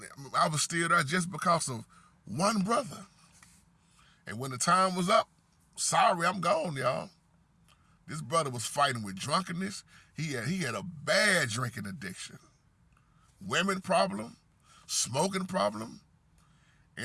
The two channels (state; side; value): identical; both; correlation 1.00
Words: I was still there just because of one brother. And when the time was up, sorry, I'm gone, y'all. This brother was fighting with drunkenness. He had a bad drinking addiction, women problem, smoking problem,